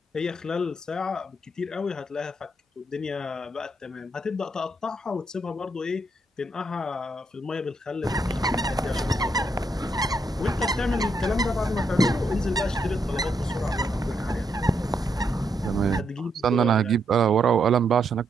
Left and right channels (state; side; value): normal; both; correlation 0.78